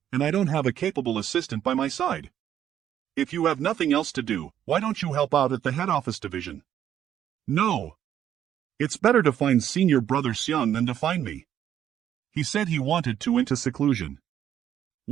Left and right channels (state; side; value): quieter; left; 10.4 dB